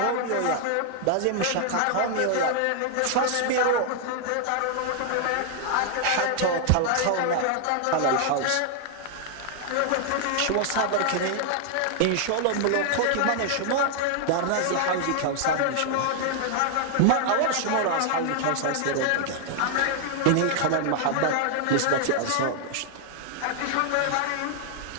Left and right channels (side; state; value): both; different; correlation 0.00